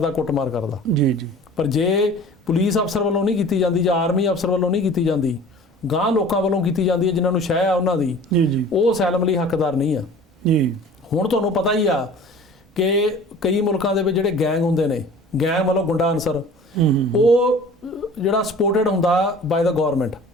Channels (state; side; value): normal; both; correlation 0.45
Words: ਕੁੱਟਮਾਰ ਕਰਦਾ। ਜੀ। ਪਰ ਜੇ ਪੁਲਿਸ ਅਫਸਰ ਵੱਲੋਂ ਨਹੀਂ ਕੀਤੀ ਜਾਂਦੀ ਜਾਂ ਆਰਮੀ ਅਫਸਰ ਵੱਲੋਂ ਨਹੀਂ ਕੀਤੀ ਜਾਂਦੀ, ਗਾਂ ਲੋਕਾਂ ਵੱਲੋਂ ਕੀਤੀ ਜਾਂਦੀ ਹੈ ਜਿਨ੍ਹਾਂ ਨੂੰ ਸ਼ਹਿ ਆ ਉਹਨਾਂ ਦੀ, ਉਹ ਅਸਾਈਲਮ ਲਈ ਹੱਕਦਾਰ ਨਹੀਂ ਆ। ਹੁਣ ਤੁਹਾਨੂੰ ਪਤਾ ਹੀ ਆ ਕਿ ਕਈ ਮੁਲਕਾਂ ਦੇ ਵਿੱਚ ਜਿਹੜੇ ਗੈਂਗ ਹੁੰਦੇ ਨੇ, ਗੈਂਗ ਵੱਲੋਂ ਗੁੰਡਾ ਅਨਸਰ, ਉਹ ਜਿਹੜਾ ਸਪੋਰਟਡ ਹੁੰਦਾ ਬਾਏ ਦਾ ਗਵਰਨਮੈਂਟ,